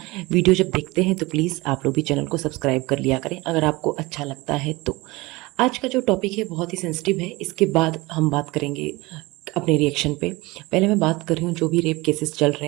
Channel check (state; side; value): quieter; left; 22.2 dB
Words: वीडियो जब देखते हैं तो प्लीज़ आप लोग भी चैनल को सब्सक्राइब कर लिया करें अगर आपको अच्छा लगता है तो। आज का जो टॉपिक है बहुत ही सेंसिटिव है, इसके बाद हम बात करेंगे अपने रिएक्शन पे। पहले मैं बात कर रही हूँ जो भी रेप केसेस चल